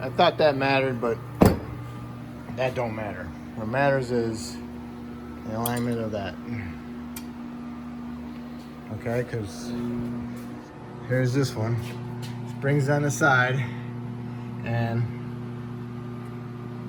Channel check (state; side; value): identical; both; correlation 1.00